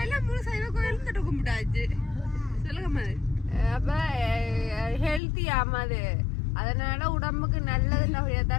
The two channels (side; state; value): right; drops out; at 5.2 s